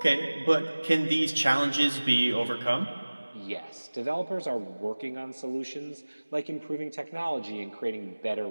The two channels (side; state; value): both; inverted; correlation -1.00